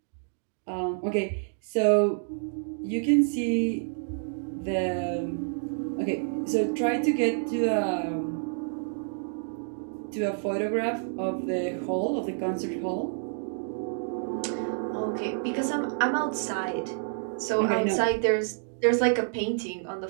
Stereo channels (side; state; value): left; silent; digital silence